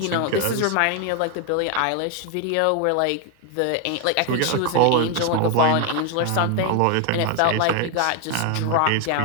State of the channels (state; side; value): different; both; correlation 0.01